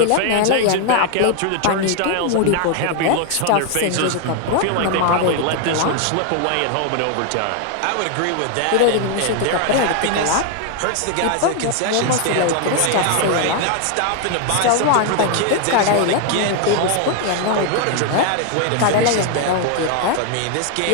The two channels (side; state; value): both; different; correlation 0.00